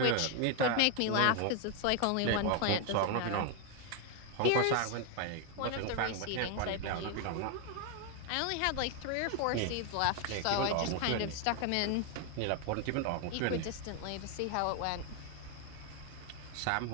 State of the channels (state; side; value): different; both; correlation 0.01